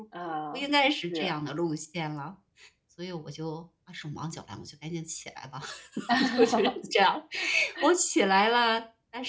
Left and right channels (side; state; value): both; identical; correlation 1.00